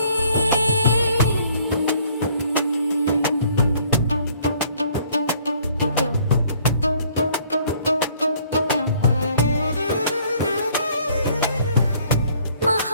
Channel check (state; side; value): inverted; both; correlation -0.61